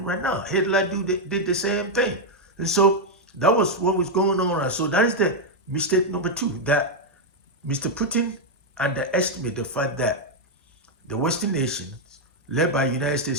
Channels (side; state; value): both; normal; correlation 0.00